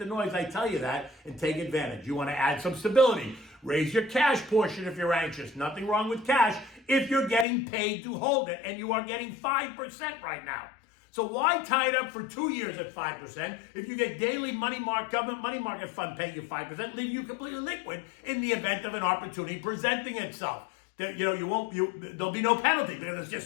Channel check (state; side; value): drops out; right; at 7.5 s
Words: noise, I tell you that, and take advantage. You want to add some stability. Raise your cash portion if you're anxious. Nothing wrong with cash if you're getting paid to hold it, and you are getting 5% right now. So why tie it up for 2 years at 5% if you get daily government money market fund paying you 5%, leaving you completely liquid in the event of an opportunity presenting itself? There'll be no penalty because it's